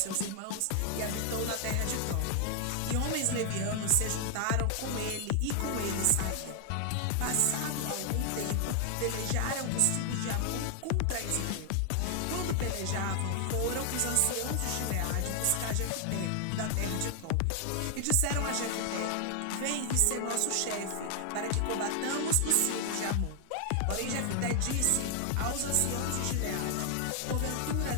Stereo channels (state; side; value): different; both; correlation 0.00